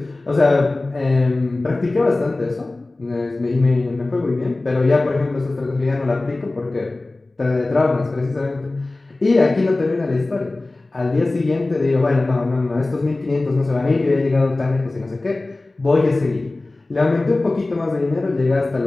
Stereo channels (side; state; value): right; quieter; 3.0 dB